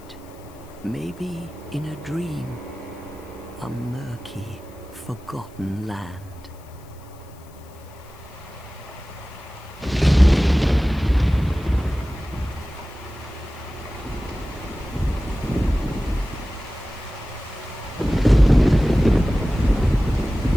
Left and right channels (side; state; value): left; noise; hiss, 27 dB below the sound